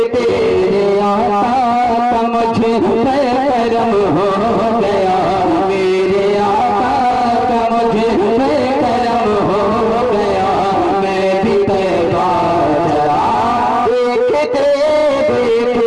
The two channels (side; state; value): both; identical; correlation 1.00